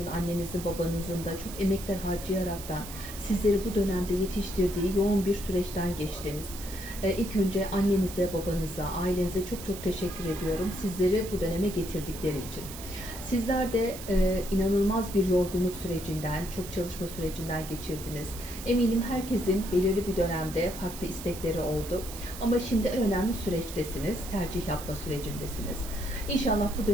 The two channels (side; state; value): right; noise; hiss, 12 dB below the sound